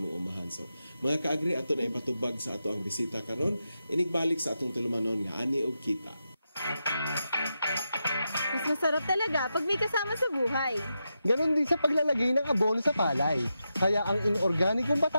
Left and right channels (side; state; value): both; inverted; correlation -0.87